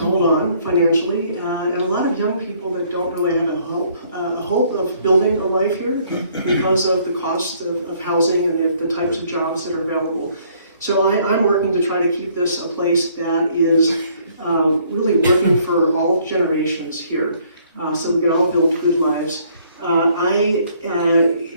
hold on financially, and a lot of young people that don't really have a hope of building a life here because of the cost of housing and the types of jobs that are available. So I'm working to try to keep this a place that is really working for all generations here, so we can all build good lives. I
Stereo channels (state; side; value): inverted; both; correlation -0.64